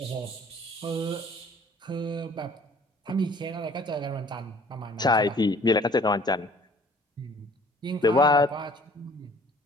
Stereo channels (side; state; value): both; normal; correlation 0.54